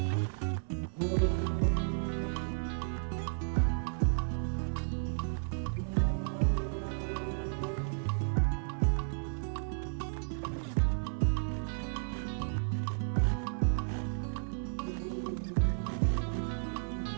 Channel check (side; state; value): left; silent; 56 dB below the other